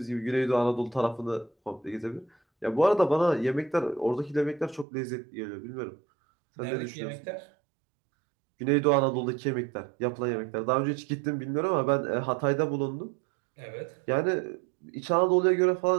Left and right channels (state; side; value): drops out; left; at 4.9 s